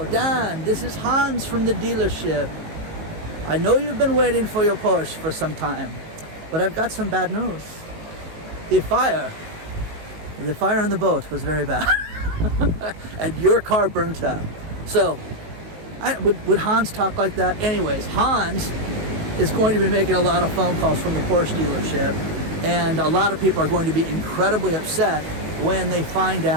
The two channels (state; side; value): late; left; 19 ms